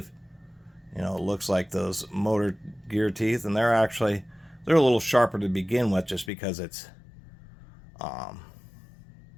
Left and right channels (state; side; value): drops out; right; at 6.3 s